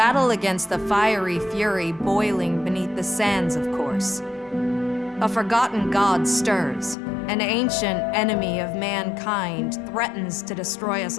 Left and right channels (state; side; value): drops out; right; at 7.0 s